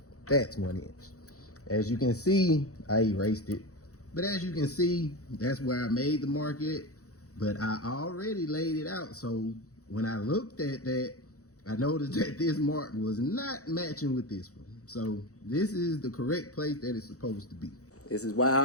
That's 1 inch. As you can see, I erased it. But as you can see, that's where I made the mark at. but I already laid it out. So when I looked at that, I noticed that this mark was not matching with this one. So this is the correct place that it's supposed to be. This is why I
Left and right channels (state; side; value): late; right; 0.65 ms